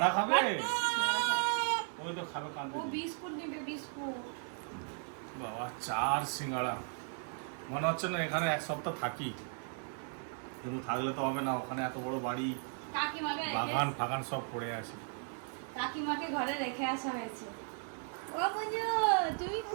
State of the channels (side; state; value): left; silent; 54 dB below the other